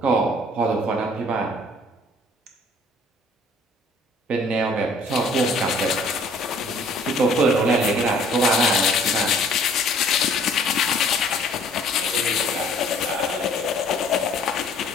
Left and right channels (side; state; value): both; normal; correlation 0.56